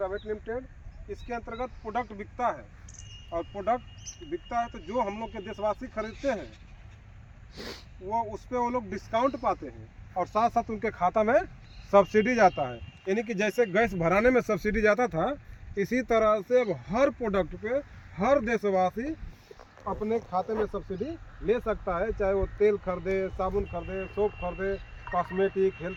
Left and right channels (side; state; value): both; identical; correlation 1.00